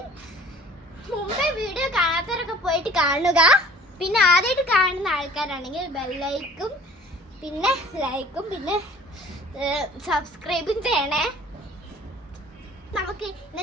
മുമ്പേ വീഡിയോ കാണാത്തവരൊക്കെ പോയിട്ട് കാണുക. പിന്നെ ആദ്യമായിട്ട് കാണുന്ന ആൾക്കാരാണെങ്കിൽ ബെല്ലൈക്കും പിന്നെ ലൈക്കും പിന്നെ സബ്സ്ക്രൈബും ചെയ്യണേ. നമുക്ക്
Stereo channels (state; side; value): normal; both; correlation 0.49